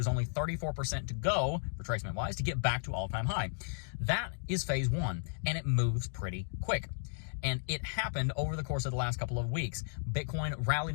only 34% to go, retracement-wise, to get back to all-time high. That is phase 1, and it moves pretty quick. And it happened over the course of the last couple of weeks. Bitcoin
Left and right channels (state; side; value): silent; right; digital silence